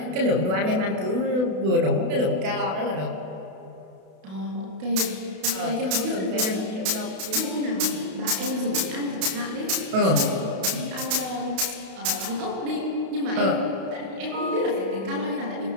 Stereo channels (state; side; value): late; left; 32 ms